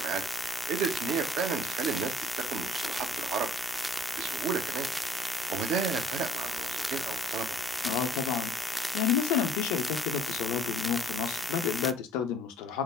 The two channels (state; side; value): normal; both; correlation 0.57